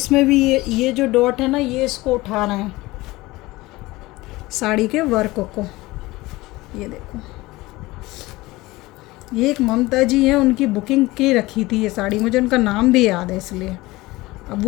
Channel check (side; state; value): right; quieter; 20.0 dB